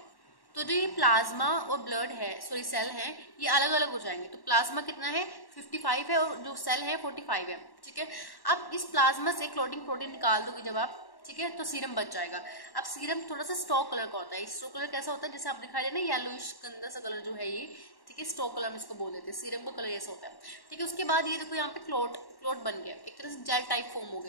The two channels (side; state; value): right; late; 1.1 ms